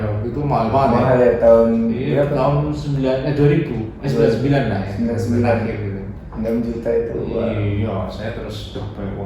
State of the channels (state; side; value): identical; both; correlation 1.00